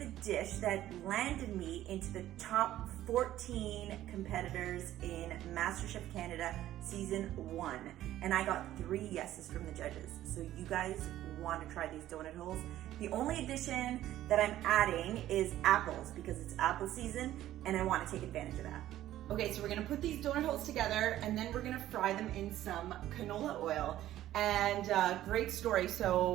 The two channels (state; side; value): quieter; left; 13.5 dB